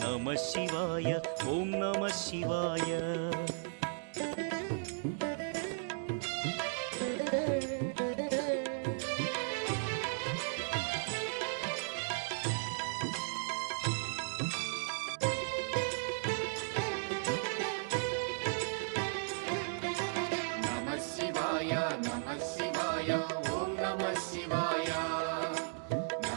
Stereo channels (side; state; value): left; silent; digital silence